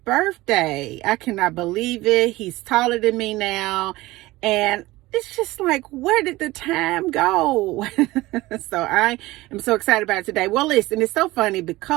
I cannot believe it. He's taller than me now. And it's just like, where did the time go? So I am so excited about it today. Well, listen, it's so funny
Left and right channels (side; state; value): left; quieter; 19.0 dB